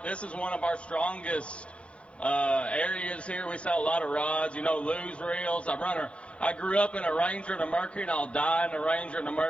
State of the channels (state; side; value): late; right; 0.061 ms